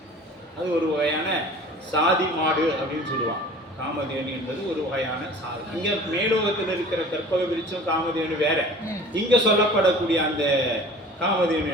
அது ஒரு வகையான சாதி மாடு அப்படின்னு சொல்லுவாங்க. காமதேனு என்பது ஒரு வகையான சாதி. இங்க மேலோகத்தில் இருக்கிற கற்பக விருட்சம் காமதேனு வேற. இங்க சொல்லப்படக்கூடிய அந்த காமதேனு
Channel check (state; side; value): normal; both; correlation 0.44